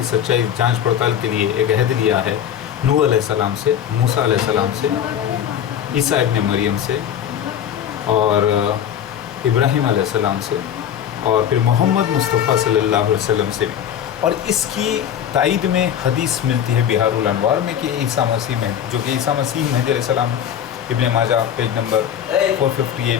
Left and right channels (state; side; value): quieter; right; 9.5 dB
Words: सच्चाई जांच पड़ताल के लिए एक अहद लिया है नूह अलैहिस्सलाम से, मूसा अलैहिस्सलाम से, ईसा इब्न मरियम से, और इब्राहीम अलैहिस्सलाम से, और फिर मोहम्मद मुस्तफ़ा सल्लल्लाहु अलैहि वसल्लम से भी। और इसकी तायद में हदीस मिलती है बिहारुल अनवार में कि ईसा मसीह में, जो कि ईसा मसीह मेहदी अलैहिस्सलाम इब्न माजा पेज नंबर